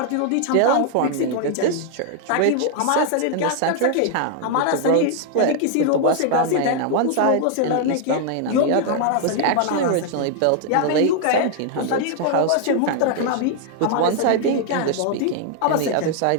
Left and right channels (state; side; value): different; both; correlation 0.00